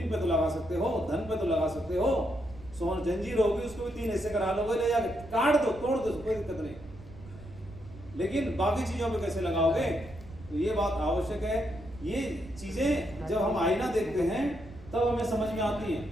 पे तो लगा सकते हो, धन पे तो लगा सकते हो, सोन जंजीर होगी उसको भी 3 हिस्से करा लोगे, ले जाके काट दो, तोड़ दो, कोई दिक्कत नहीं। लेकिन बाकी चीजों पे कैसे लगाओगे, तो ये बात आवश्यक है। ये चीजें जब हम आईना देखते हैं तब हमें समझ में आती हैं।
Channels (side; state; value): right; noise; rumble, 18 dB below the sound